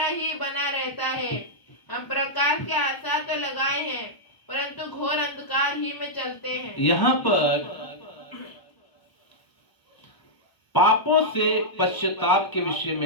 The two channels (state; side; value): late; right; 1.0 ms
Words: ही बना रहता है। हम प्रकाश की आशा तो लगाए हैं, परंतु घोर अंधकार ही में चलते हैं। यहाँ पर पापों से पश्चाताप के विषय